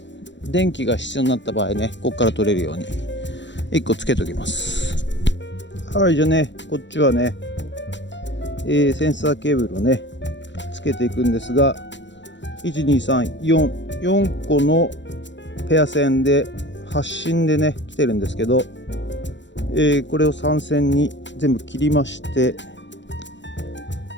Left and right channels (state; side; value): late; right; 0.53 ms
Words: 電気が必要になった場合ね、ここから取れるように1個つけておきます。はい、じゃあね、こっちはね、センサーケーブルをねつけていくんですが、12344個のペア線で発信でね来てるんですけど、これを3線に全部切りまして、